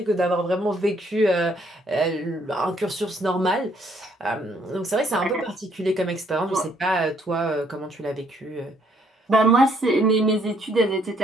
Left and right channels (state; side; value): normal; both; correlation 0.68